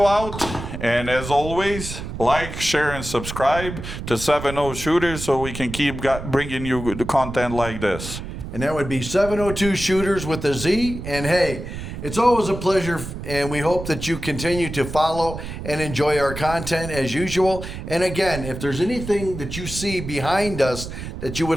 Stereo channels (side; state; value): right; noise; rumble, 8 dB below the sound